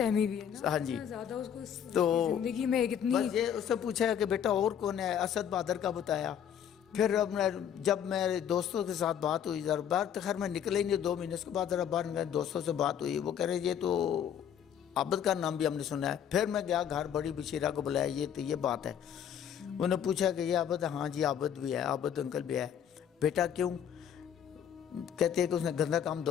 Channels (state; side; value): quieter; right; 8.9 dB